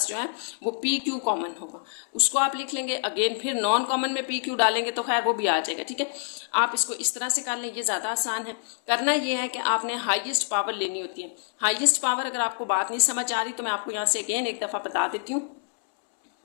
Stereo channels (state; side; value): silent; right; 61 dB below the other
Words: जो है वो पी क्यू कॉमन होगा, उसको आप लिख लेंगे। अगेन फिर नॉन कॉमन में पी क्यू डालेंगे तो खैर वो भी आ जाएगा, ठीक है। आप इसको इस तरह से कर लें, ये ज़्यादा आसान है। करना ये है कि आपने हाईएस्ट पावर लेनी होती है। हाईएस्ट पावर अगर आपको बात नहीं समझ आ रही तो मैं आपको यहाँ से अगेन एक दफ़ा बता देती हूँ।